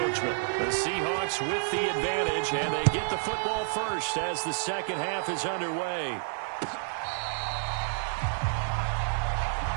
The Seahawks with the advantage, and they get the football first as the second half is underway.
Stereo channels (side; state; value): left; silent; digital silence